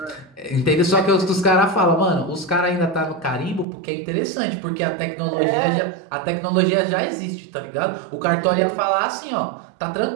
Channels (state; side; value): drops out; left; at 3.7 s